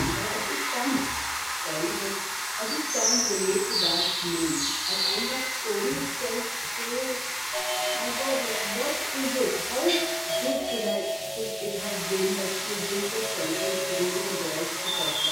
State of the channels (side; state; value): both; identical; correlation 1.00